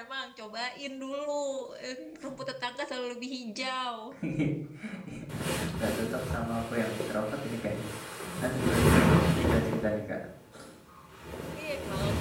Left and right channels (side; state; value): both; identical; correlation 1.00